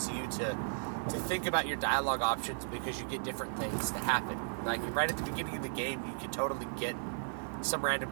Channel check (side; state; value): left; silent; 54 dB below the other